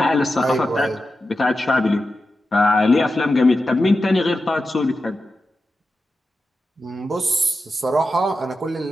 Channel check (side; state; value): both; normal; correlation 0.91